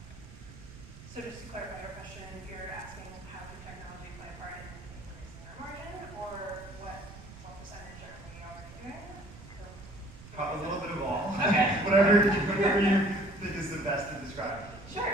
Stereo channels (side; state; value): right; noise; rumble, 17 dB below the sound